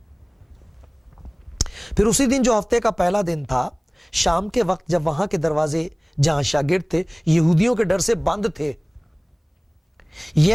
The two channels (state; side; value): identical; both; correlation 1.00